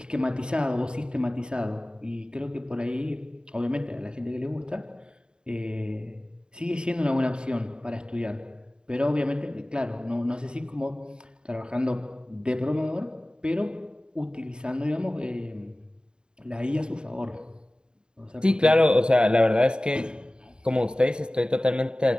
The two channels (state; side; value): late; left; 0.049 ms